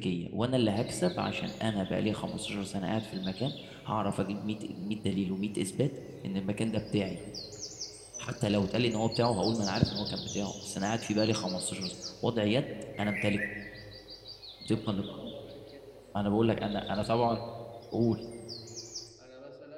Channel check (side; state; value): both; identical; correlation 1.00